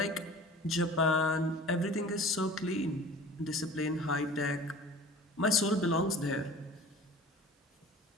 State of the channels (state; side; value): normal; both; correlation 0.43